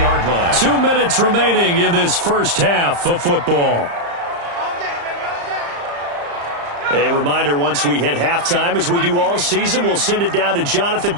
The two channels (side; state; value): left; late; 35 ms